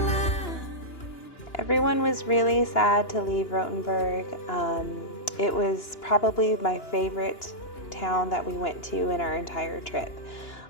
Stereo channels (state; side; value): late; right; 2.9 ms